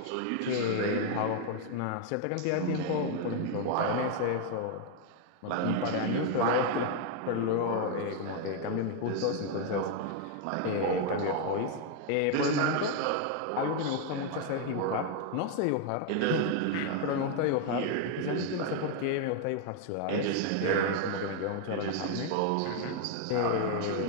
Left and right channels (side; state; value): both; different; correlation 0.00